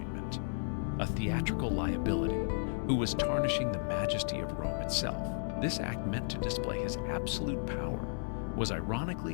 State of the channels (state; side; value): silent; right; digital silence